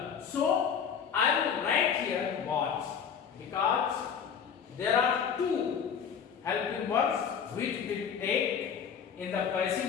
So I will write here was, because there are two helping verbs which will take in the passive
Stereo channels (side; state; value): right; quieter; 7.3 dB